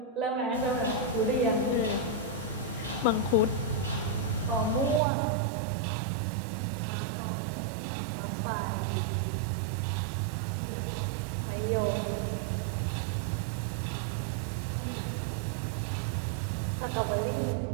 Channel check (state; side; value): drops out; left; at 5.0 s